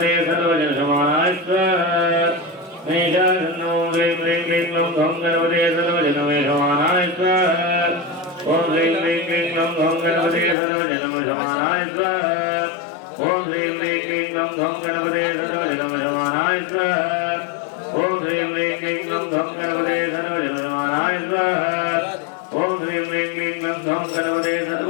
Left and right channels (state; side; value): drops out; right; at 10.6 s